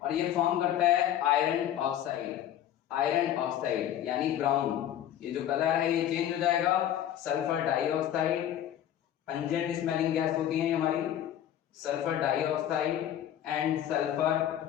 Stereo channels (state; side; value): quieter; right; 11.1 dB